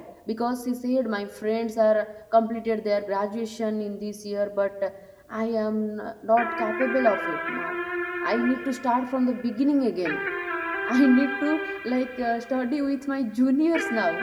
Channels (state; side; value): identical; both; correlation 1.00